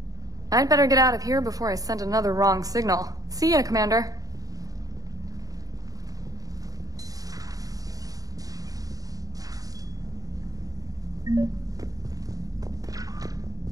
I'd better get out of here before I send another wrong signal. See ya, Commander.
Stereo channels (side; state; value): left; late; 0.18 ms